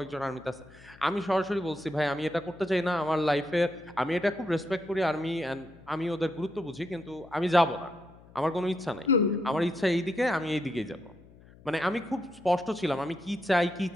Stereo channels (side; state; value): left; noise; hum, 23 dB below the sound